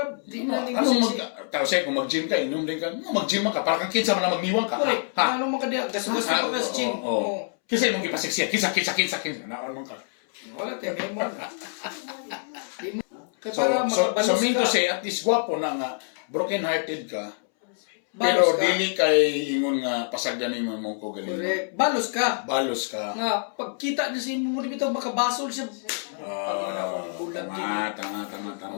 di na Ano tao say kung mag-gym ka, inom din ka. Mag-gym ka para kang kinsa man na magniwang ka. Correct. Ha? Ano man ka diya? Gas-gas ka pa sa gym. Kasi mong ipasiksik, kinsa. Naon man ka. Wala tayo, may mo. So mean to say, at least gwapo na nga, broken-hearted ka, pero Balos ka. dili kay ingon nga pasagdanin mo mong ko galing. Correct. Balos ka. Balos ka. Nga, pagkita niya sa imo mo bitaw makabasol siya. Tama.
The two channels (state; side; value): silent; right; 61 dB below the other